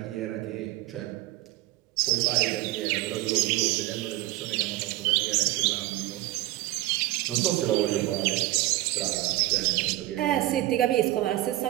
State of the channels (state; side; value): quieter; left; 17.0 dB